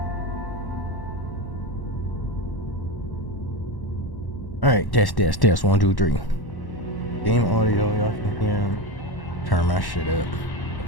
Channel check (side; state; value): right; late; 1.1 ms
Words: All right, test. 1, 2, 3. Game audio, y'all can hear. Turn my shit up